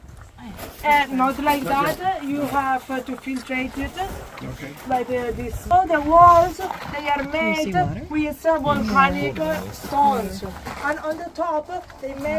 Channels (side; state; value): both; identical; correlation 1.00